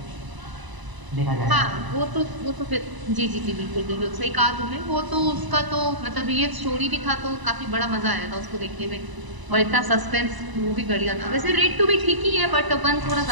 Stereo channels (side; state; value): left; late; 1.0 ms